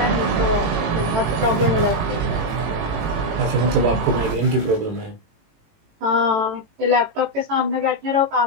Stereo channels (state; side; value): late; left; 18 ms